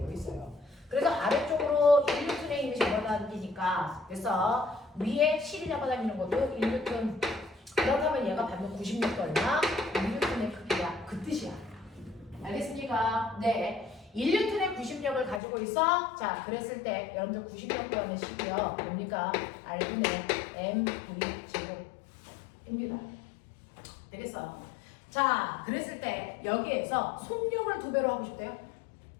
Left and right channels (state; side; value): drops out; right; at 15.4 s